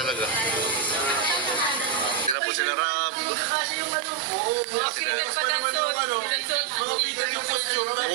Sila po sila Rob.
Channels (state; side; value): drops out; left; at 2.4 s